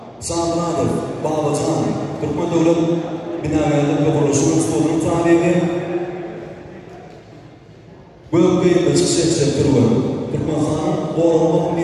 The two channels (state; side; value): identical; both; correlation 1.00